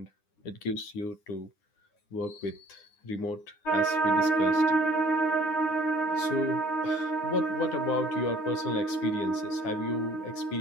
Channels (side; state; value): right; late; 9.7 ms